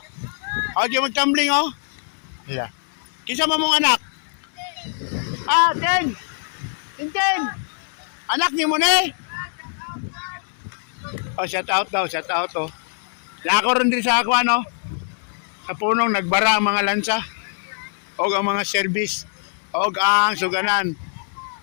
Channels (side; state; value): right; silent; digital silence